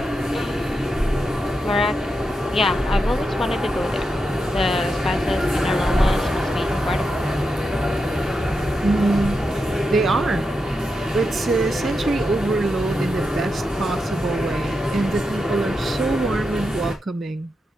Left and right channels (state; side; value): normal; both; correlation 0.87